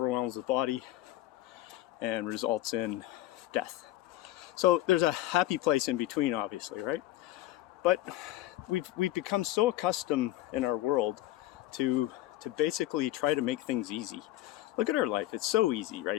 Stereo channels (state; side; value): quieter; right; 15.2 dB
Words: the body and results in death. So there's a happy place in between, obviously, right? But we've become so accustomed in our world to basically try to make things easy. Look at our life. It's so easy